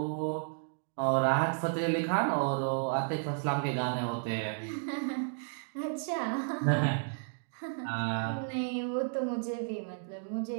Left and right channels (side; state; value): left; silent; digital silence